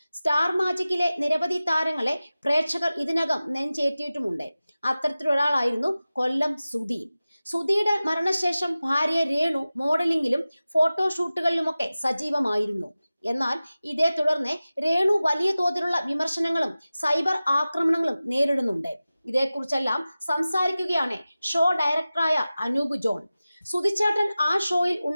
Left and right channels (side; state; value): both; inverted; correlation -0.96